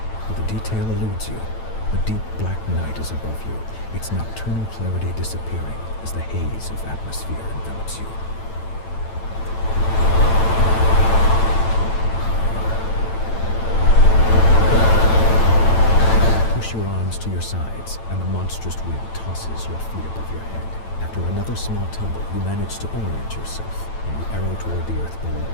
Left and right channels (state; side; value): late; right; 9.0 ms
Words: but the detail eludes you. A deep black night is above you, its nocturnal clarity disappearing as the haze of atmosphere envelops you. Push your arms to your sides, and the monstrous wind tosses your feet above your head. After another small tumble, you manage to orient yourself, and you arrow toward the earth below.